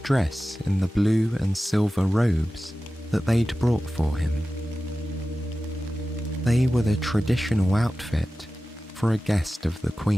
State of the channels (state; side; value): normal; both; correlation 0.95